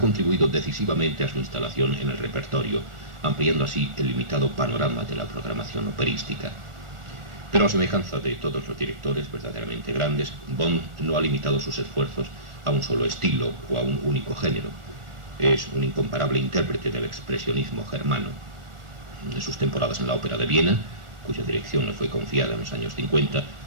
decisivamente a su instalación en el repertorio, ampliando así el limitado panorama de la programación operística. Pero a semejanza de todos los directores verdaderamente grandes, Böhm no ha limitado sus esfuerzos a un solo estilo o a un único género. Es un incomparable intérprete del expresionismo germano. En sus temporadas en la Ópera de Viena, cuya dirección le fue confiada en los años 50,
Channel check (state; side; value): late; left; 1.4 ms